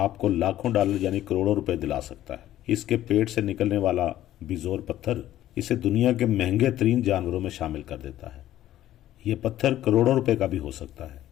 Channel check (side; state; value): right; quieter; 13.2 dB